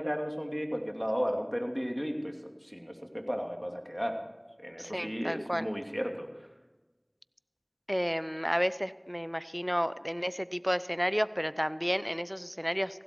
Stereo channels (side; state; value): both; identical; correlation 1.00